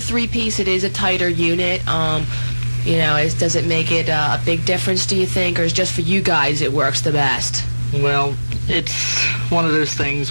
three-piece it is a tighter unit. Does it make it a big difference, do you think, or is just for you guys it works the best? Well, it's one of those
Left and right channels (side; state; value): both; inverted; correlation -1.00